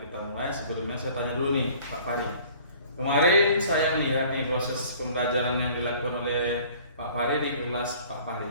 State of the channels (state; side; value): inverted; both; correlation -0.51